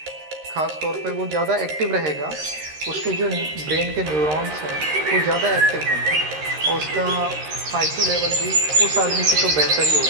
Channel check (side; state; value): left; late; 13 ms